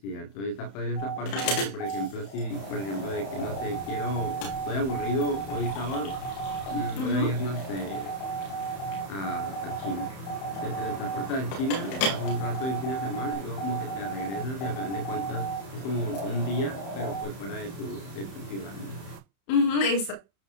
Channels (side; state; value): right; late; 31 ms